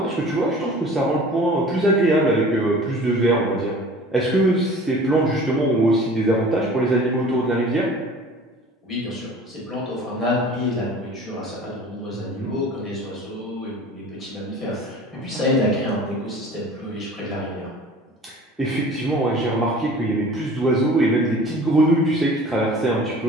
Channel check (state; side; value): normal; both; correlation 0.44